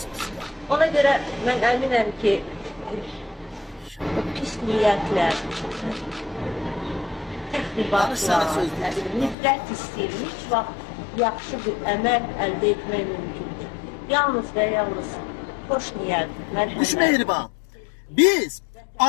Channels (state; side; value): drops out; right; at 9.3 s